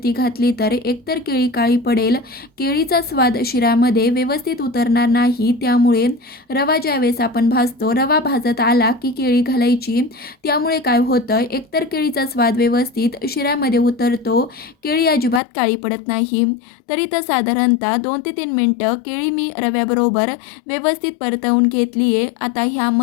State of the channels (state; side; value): drops out; right; at 15.4 s